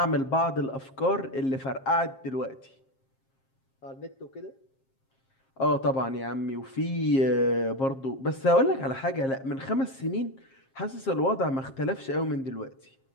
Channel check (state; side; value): late; right; 7.5 ms